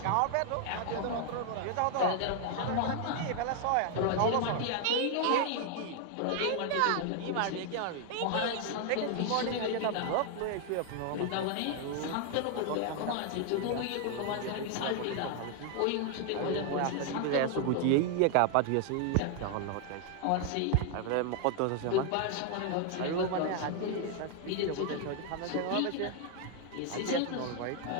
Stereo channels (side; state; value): both; different; correlation 0.00